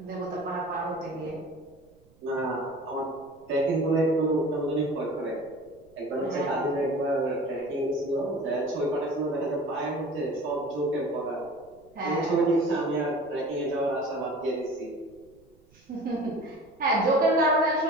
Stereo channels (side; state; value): right; noise; rumble, 30 dB below the sound